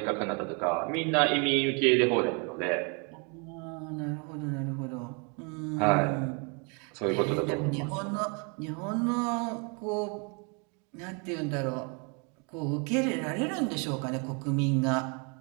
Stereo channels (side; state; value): left; quieter; 34.8 dB